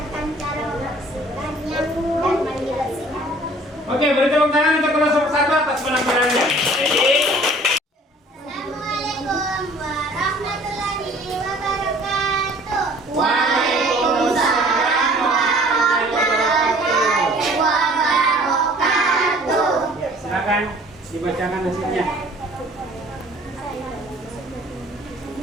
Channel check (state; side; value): normal; both; correlation 0.52